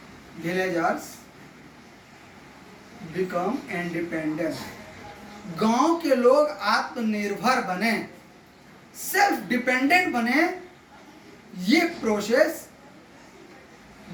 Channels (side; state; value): both; identical; correlation 1.00